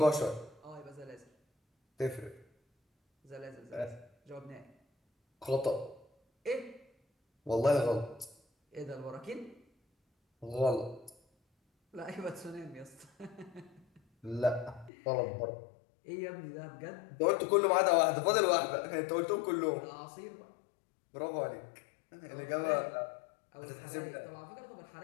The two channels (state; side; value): drops out; right; at 14.9 s